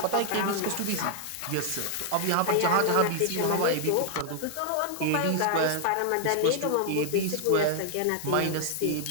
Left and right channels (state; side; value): different; both; correlation 0.00